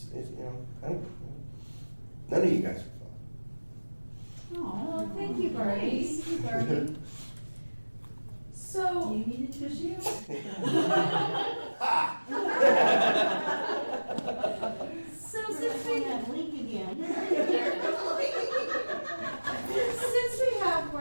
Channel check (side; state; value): both; inverted; correlation -1.00